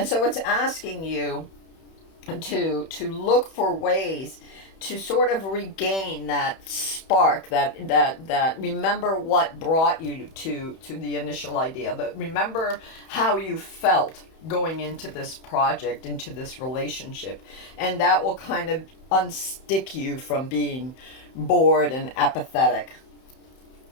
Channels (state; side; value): late; right; 31 ms